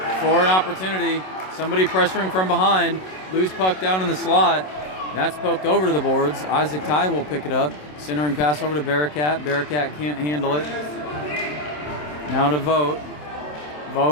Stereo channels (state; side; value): late; right; 27 ms